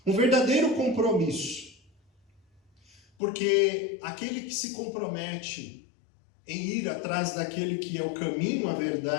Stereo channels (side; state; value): right; drops out; at 3.0 s